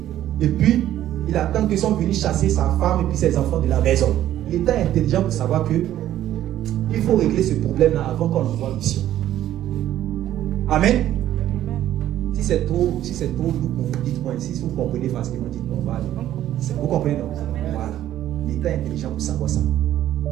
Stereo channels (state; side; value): quieter; left; 12.5 dB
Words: Et puis, il attend qu'ils sont venus chasser sa femme et puis ses enfants de la maison. L'État est intelligent pour savoir que il faut régler ce problème-là avant qu'on envoie en mission. Amen. Si c'est trop lourd pour vous, dites-moi. Si vous comprenez facilement, dites-moi. Vous comprenez, non? Voilà. L'État est intelligent pour savoir ça.